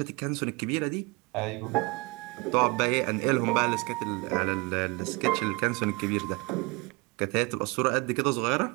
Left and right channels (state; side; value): quieter; left; 26.3 dB